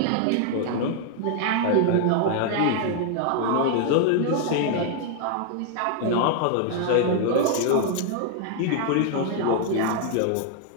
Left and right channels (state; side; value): different; both; correlation 0.00